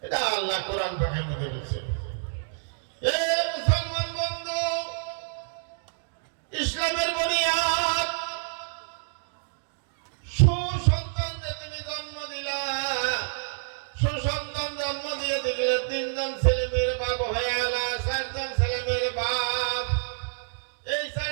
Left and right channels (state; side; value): silent; left; digital silence